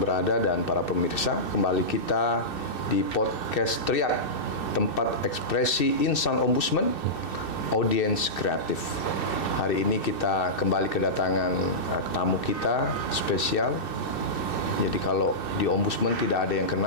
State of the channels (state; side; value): late; right; 2.6 ms